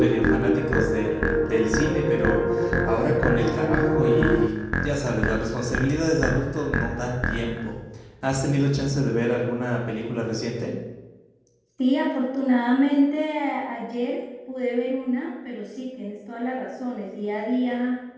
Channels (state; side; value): identical; both; correlation 1.00